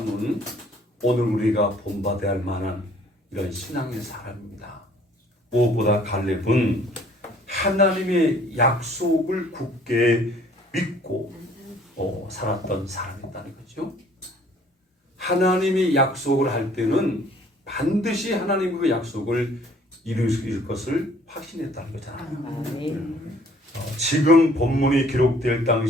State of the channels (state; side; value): normal; both; correlation 0.57